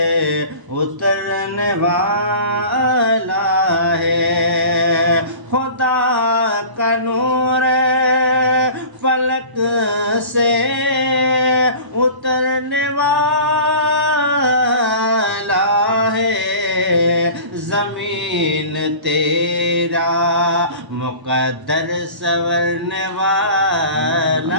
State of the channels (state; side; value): late; left; 1.0 ms